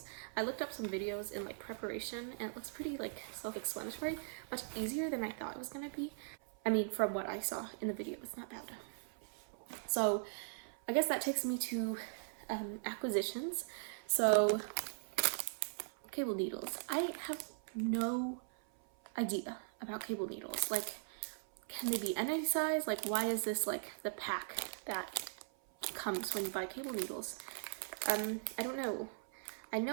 I looked up some videos in like preparation, and it looks pretty like self-explanatory, much easier than I thought it was gonna be. I mean, from what I saw in the video, it's not bad. So I guess that takes me to acquisitions. So cable needles. I have no idea about cable needles. Like, can they be any size? Like, why is this like the pack that comes when you buy cable needles? I don't know. I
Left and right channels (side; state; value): left; silent; 51 dB below the other